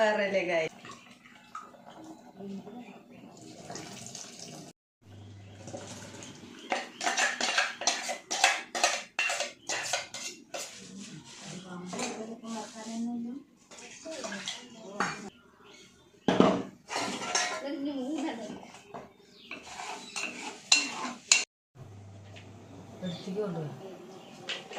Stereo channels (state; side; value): identical; both; correlation 1.00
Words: വേറെ അല്ലേ ഗൈസ്.